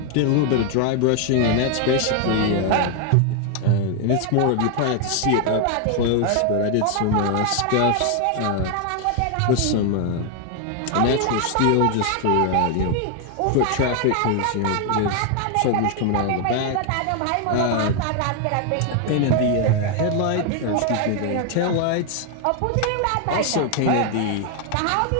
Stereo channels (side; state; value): both; different; correlation 0.00